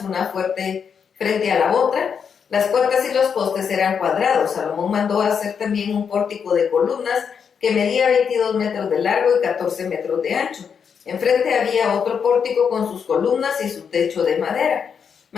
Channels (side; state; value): right; quieter; 6.8 dB